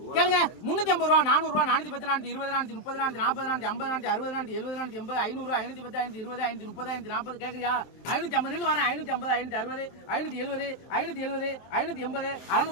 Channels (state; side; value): late; right; 23 ms